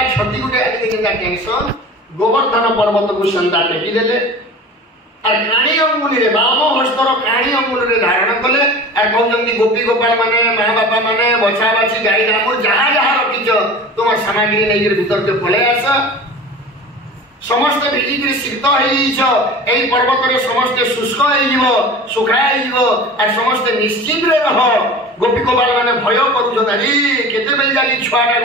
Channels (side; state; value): both; normal; correlation 0.37